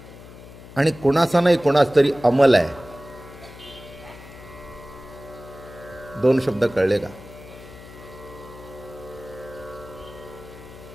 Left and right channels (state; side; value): noise; left; hum, 17 dB below the sound